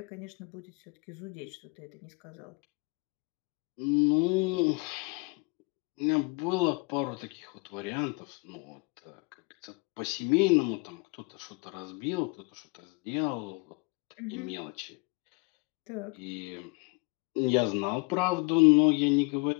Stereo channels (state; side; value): quieter; right; 30.4 dB